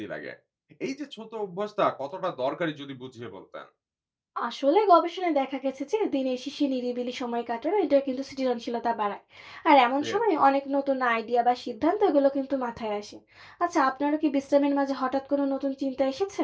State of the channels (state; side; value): identical; both; correlation 1.00